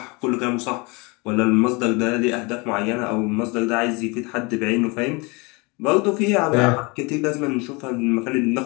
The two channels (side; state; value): right; quieter; 27.6 dB